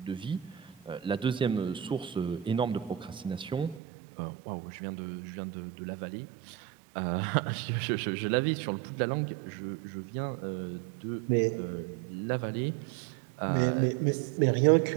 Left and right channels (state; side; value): drops out; left; at 3.8 s